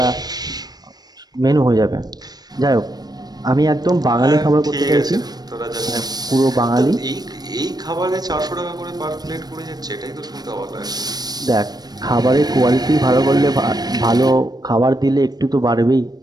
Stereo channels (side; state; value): left; late; 0.19 ms